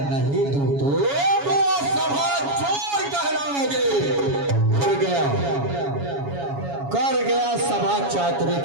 नहीं दूं तो सभा चोर कहलाओगे। कर गया सभा चातुर्य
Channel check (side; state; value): left; late; 7.2 ms